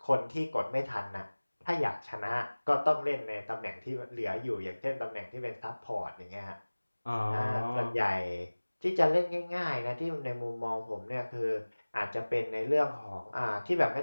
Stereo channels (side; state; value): both; inverted; correlation -1.00